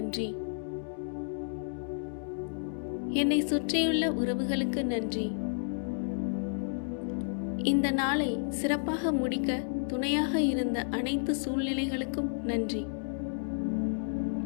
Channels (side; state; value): right; silent; digital silence